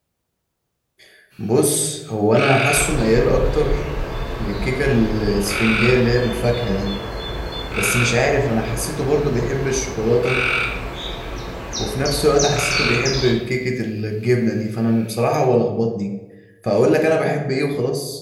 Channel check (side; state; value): both; identical; correlation 1.00